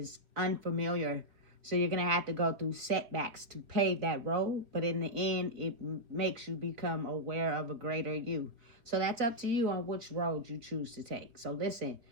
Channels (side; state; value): left; late; 4.1 ms